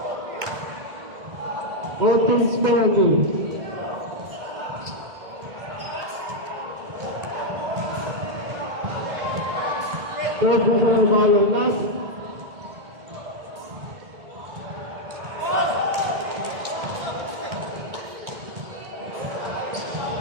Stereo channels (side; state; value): left; late; 2.1 ms